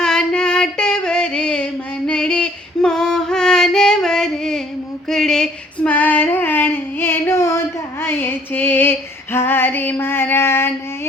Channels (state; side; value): normal; both; correlation 0.59